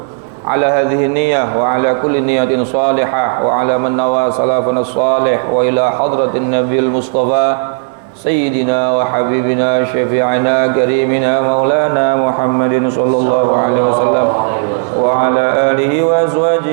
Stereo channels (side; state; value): left; silent; digital silence